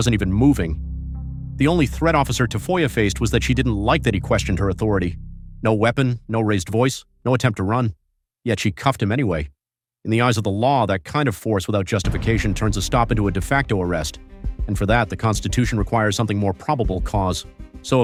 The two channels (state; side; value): identical; both; correlation 1.00